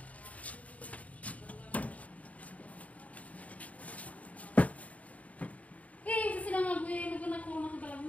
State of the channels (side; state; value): right; late; 0.069 ms